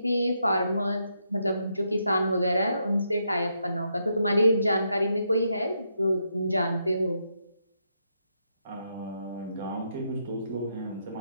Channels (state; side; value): inverted; both; correlation -0.79